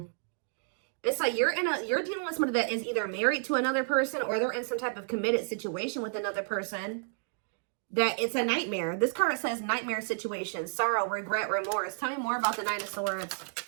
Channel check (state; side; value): silent; left; digital silence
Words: It's like you're dealing with somebody that is either married to another person, or they're in some type of committed situation with another person. That it's a nightmare. This card says nightmare situation, sorrow, regret, remorse. Tell me more about the 9 of Swords.